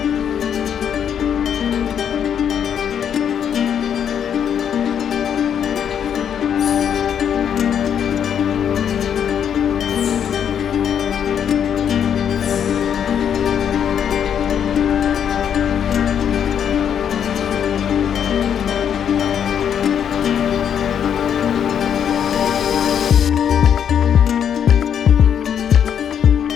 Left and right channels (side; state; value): right; quieter; 8.6 dB